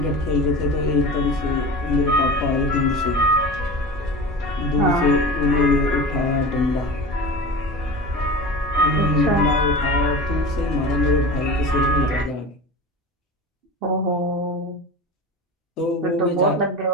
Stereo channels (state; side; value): normal; both; correlation 0.31